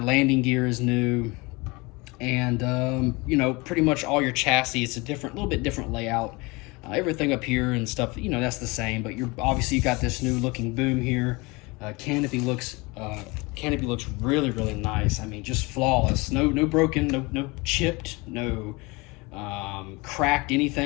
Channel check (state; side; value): quieter; right; 25.4 dB